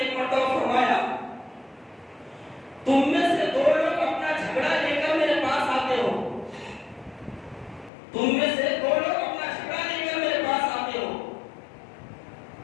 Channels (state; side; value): drops out; right; at 7.9 s